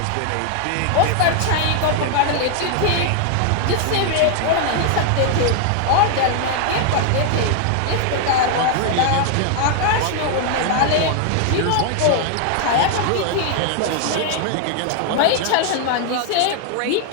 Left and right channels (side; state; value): both; different; correlation 0.00